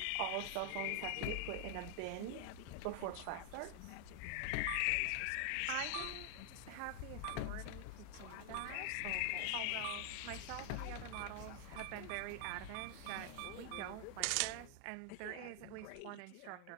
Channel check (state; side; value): different; both; correlation 0.00